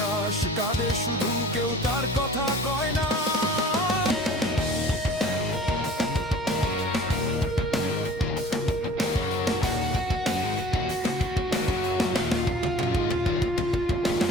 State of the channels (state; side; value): normal; both; correlation 0.47